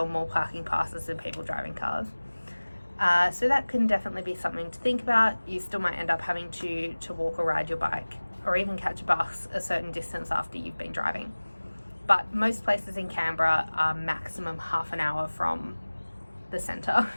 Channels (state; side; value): inverted; both; correlation -1.00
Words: more parking passes than people driving cars. So that can definitely be something to think about. You still might end up having to walk or ride your bike, or even catch a bus a certain distance after you've been driving. But most places in Canberra are maximum half an hour from the centre.